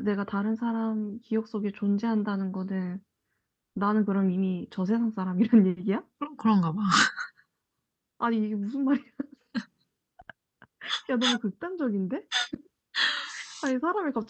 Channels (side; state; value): both; identical; correlation 1.00